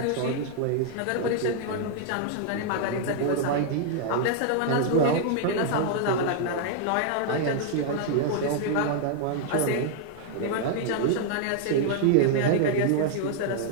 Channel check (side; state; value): both; different; correlation -0.01